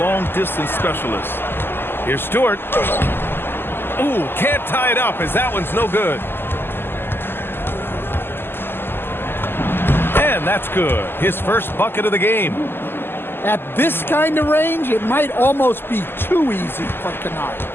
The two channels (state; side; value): late; right; 0.10 ms